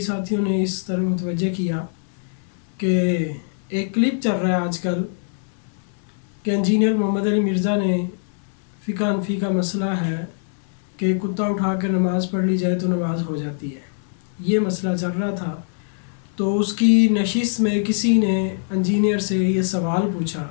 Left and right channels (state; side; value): silent; right; 64 dB below the other